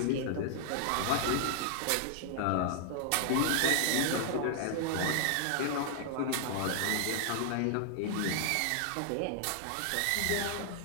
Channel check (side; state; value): both; different; correlation -0.01